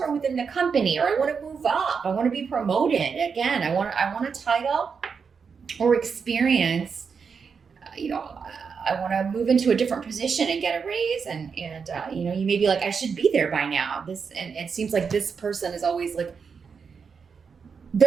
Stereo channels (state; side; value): quieter; left; 5.9 dB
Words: within the company, or I want to move up. I want to be promoted. Again, I want a title or experience. I want to move into a different position and get a raise. And you may be like, I should be there by now. And it seems like this person is always like,